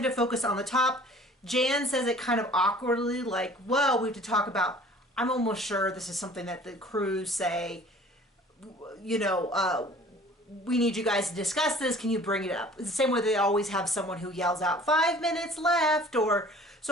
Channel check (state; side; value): normal; both; correlation 0.49